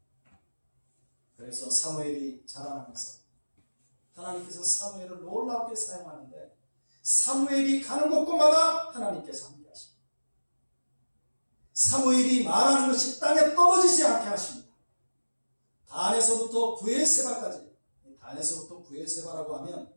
그래서 사무엘이 자라나면서 하나님께서 사무엘을 놀랍게 사용하는데 사무엘이 가는 곳곳마다 하나님께서 함께 하십니다. 사무엘이 말하는 것이 땅에 떨어지지 않게 하십니다. 단에서부터 브에세바까지, 단에서부터 브에세바라고 하면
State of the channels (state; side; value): inverted; both; correlation -1.00